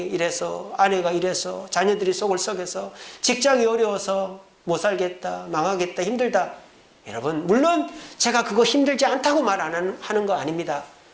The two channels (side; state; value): both; identical; correlation 1.00